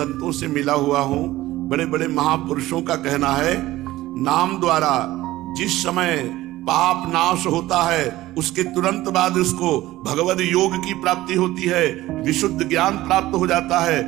से मिला हुआ हूं, बड़े बड़े महापुरुषों का कहना है, नाम द्वारा जिस समय पाप नाश होता है उसके तुरंत बाद उसको भगवद योग की प्राप्ति होती है, विशुद्ध ज्ञान प्राप्त हो जाता है,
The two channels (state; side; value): quieter; left; 16.5 dB